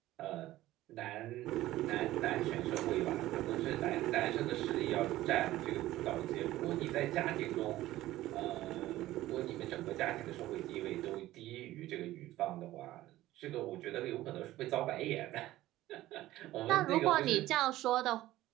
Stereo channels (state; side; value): quieter; left; 15.7 dB